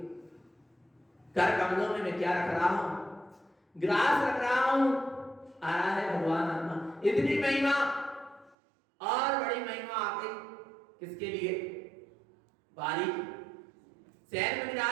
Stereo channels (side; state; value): left; drops out; at 8.6 s